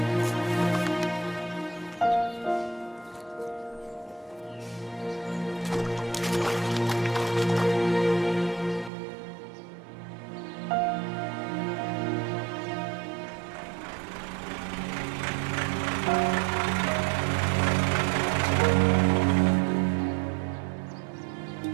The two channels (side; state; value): left; drops out; at 8.9 s